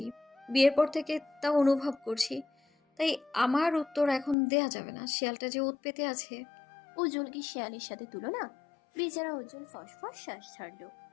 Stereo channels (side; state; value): right; drops out; at 4.4 s